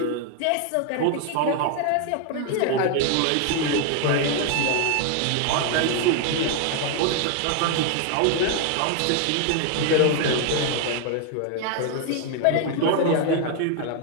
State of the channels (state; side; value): different; both; correlation 0.00